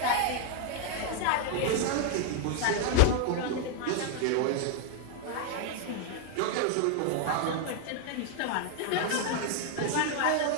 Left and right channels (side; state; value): both; different; correlation 0.00